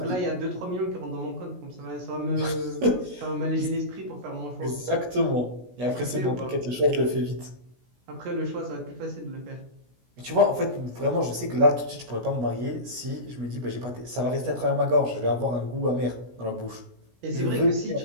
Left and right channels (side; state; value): left; late; 16 ms